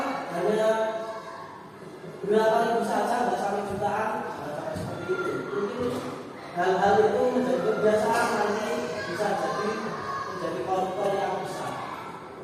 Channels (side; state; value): both; identical; correlation 1.00